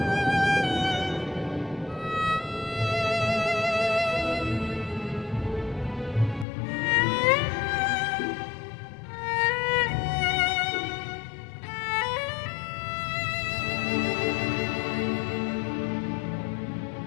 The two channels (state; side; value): drops out; right; at 6.5 s